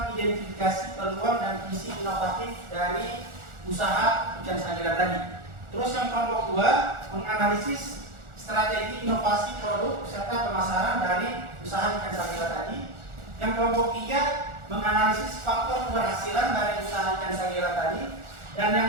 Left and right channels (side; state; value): left; late; 1.4 ms